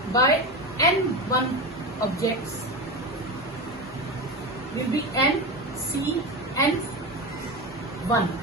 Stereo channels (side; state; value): both; normal; correlation 0.21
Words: by N1 objects will be N, C, N1.